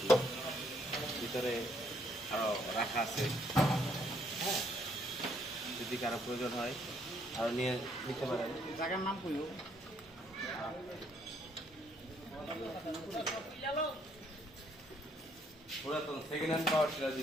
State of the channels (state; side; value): normal; both; correlation 0.69